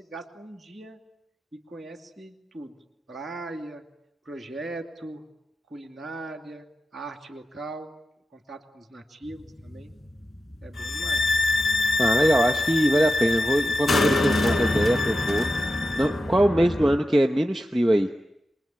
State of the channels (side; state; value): both; normal; correlation 0.92